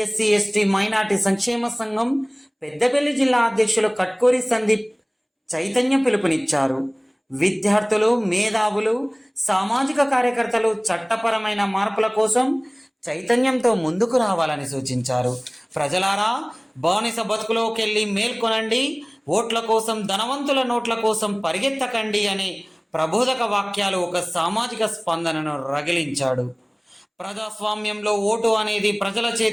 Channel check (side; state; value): both; identical; correlation 1.00